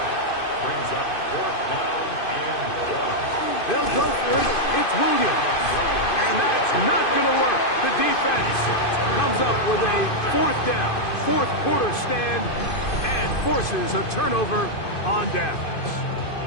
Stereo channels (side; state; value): right; late; 2.5 ms